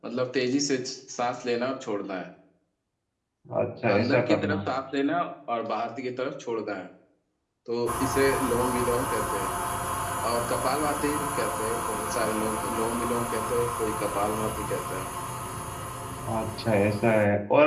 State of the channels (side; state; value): both; identical; correlation 1.00